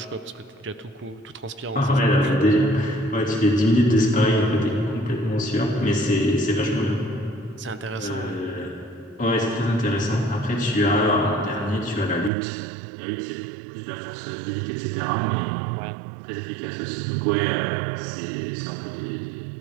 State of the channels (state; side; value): drops out; left; at 12.3 s